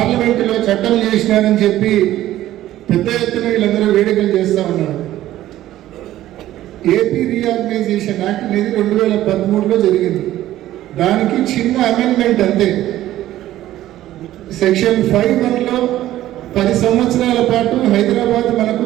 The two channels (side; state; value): left; quieter; 14.0 dB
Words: చట్టం చేసినారని చెప్పి పెద్ద ఎత్తున వీళ్ళందరూ వేడుకలు చేస్తూ ఉన్నారు. ఏపీ రీఆర్గనైజేషన్ యాక్ట్ అనేది 2013లో జరిగింది. దానికి చిన్న అమెండ్మెంట్ అంతే. సెక్షన్ 5(1)లో 10 సంవత్సరాల పాటు హైదరాబాద్ మనకు